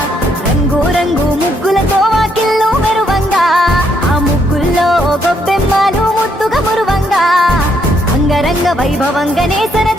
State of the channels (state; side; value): normal; both; correlation 0.73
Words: రంగు రంగు ముగ్గులతో వాకిళ్ళు మెరువంగా ఆ ముగ్గుల్లో గొబ్బెమ్మలు ముద్దుగా మురువంగా అంగరంగ వైభవంగానే